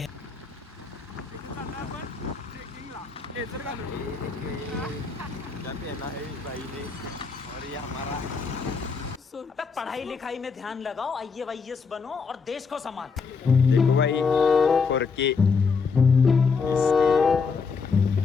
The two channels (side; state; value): right; quieter; 5.1 dB